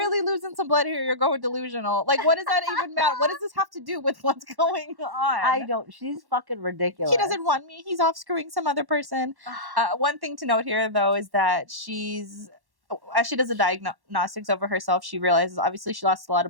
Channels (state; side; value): late; left; 1.1 ms